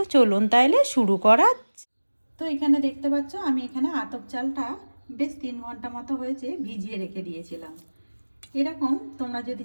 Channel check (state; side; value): inverted; both; correlation -1.00